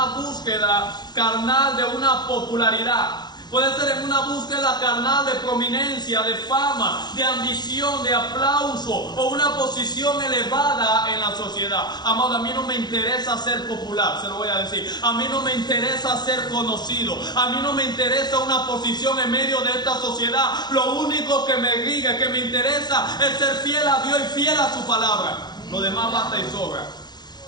búsqueda carnal de una popularidad. Puede ser en una búsqueda carnal de prominencia, de fama, de ambición, de aplauso o una posición elevada en la sociedad. Amado, a mí no me interesa ser popular, se lo voy a decir. A mí no me interesa ser conocido. A mí no me interesa una posición en medio de esta sociedad. Lo único que me rige, que me interesa es ser fiel a Dios y fiel a su palabra. Lo demás basta y sobra.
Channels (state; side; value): late; right; 0.20 ms